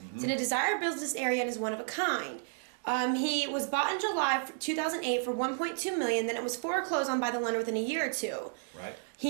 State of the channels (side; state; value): left; silent; digital silence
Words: It's in a desired business area and is one of a kind. He was bought in July 2008 for $1.2 million. Then it was foreclosed on by the lender within a year or two. Right.